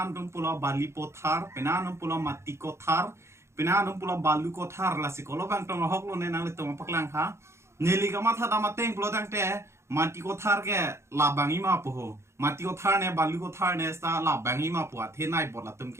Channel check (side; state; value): left; late; 0.13 ms